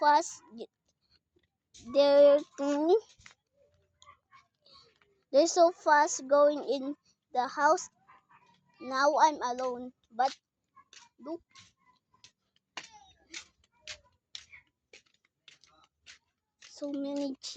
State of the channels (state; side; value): identical; both; correlation 1.00